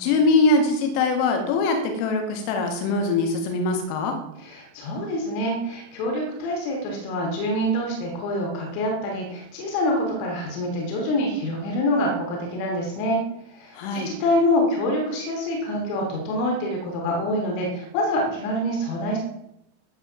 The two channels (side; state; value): right; late; 30 ms